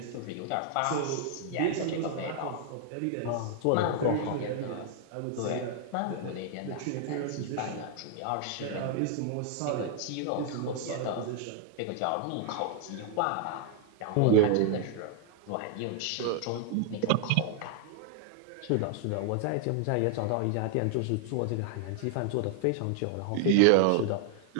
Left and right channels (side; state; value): both; different; correlation 0.00